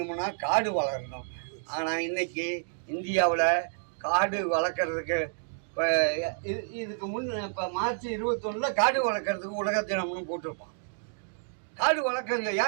காடு வளரணும். ஆனால் இன்றைக்கி இந்தியாவில் காடு வளர்க்குறதுக்கு இப்போ இதுக்கு இப்போ மார்ச் 21 காடு வளர்க்குறதுக்கு உலக தினம்னு போட்டிருப்பான். காடு வளர்க்குறது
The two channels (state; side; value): silent; left; digital silence